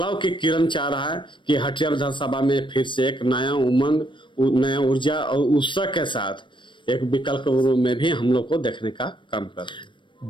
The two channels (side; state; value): right; late; 0.24 ms